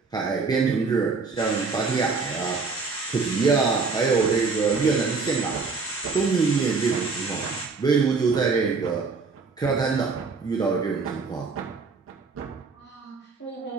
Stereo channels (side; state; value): left; quieter; 4.5 dB